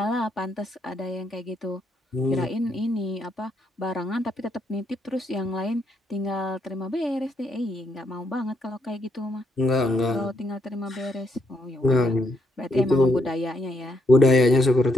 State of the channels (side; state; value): both; normal; correlation 0.76